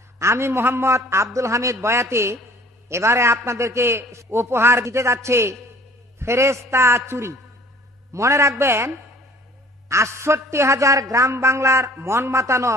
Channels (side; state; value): both; normal; correlation 0.52